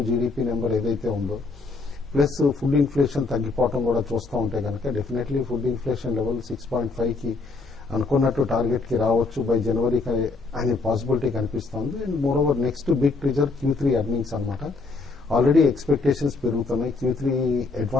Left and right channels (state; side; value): quieter; right; 3.9 dB